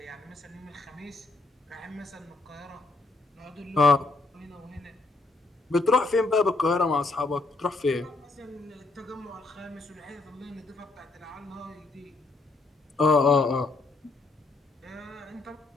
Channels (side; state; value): right; quieter; 3.4 dB